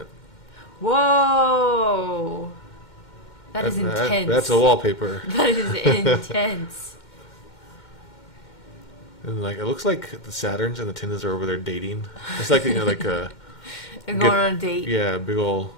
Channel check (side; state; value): right; late; 2.1 ms